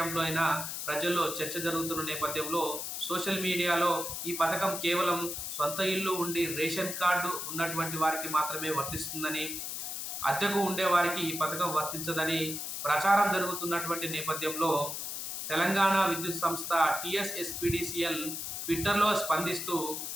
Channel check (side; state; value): left; noise; hiss, 5 dB below the sound